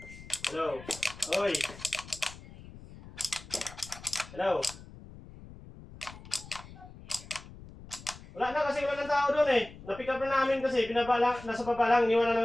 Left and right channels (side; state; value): left; noise; rumble, 17 dB below the sound